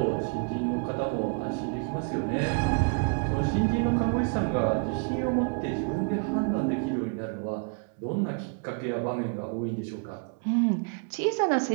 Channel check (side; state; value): left; quieter; 39.1 dB